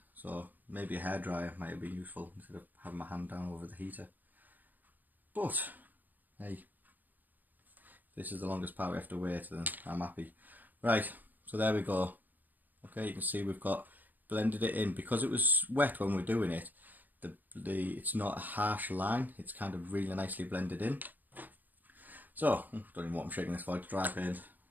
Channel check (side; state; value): left; late; 0.085 ms